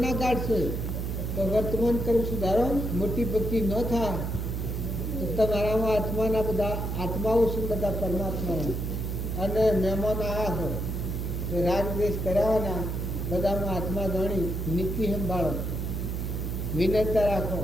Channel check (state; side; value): noise; right; hum, 2 dB below the sound